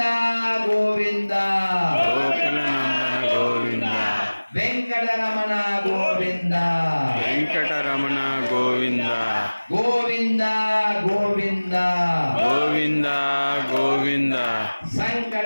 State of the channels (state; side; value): inverted; both; correlation -1.00